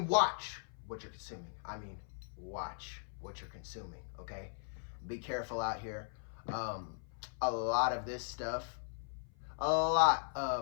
watch what you're consuming. I mean watch what you're consuming, okay? Be careful out here. A lot of this stuff,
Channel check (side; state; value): right; silent; 52 dB below the other